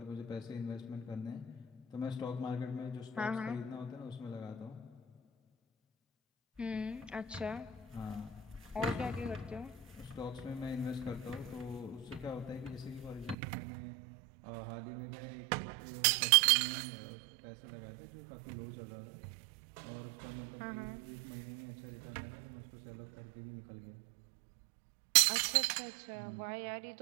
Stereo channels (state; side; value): drops out; left; at 13.4 s